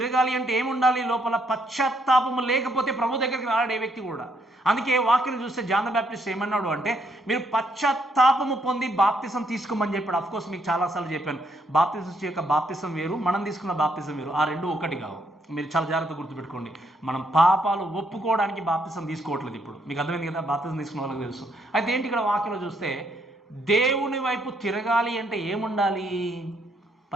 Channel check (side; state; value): both; normal; correlation 0.72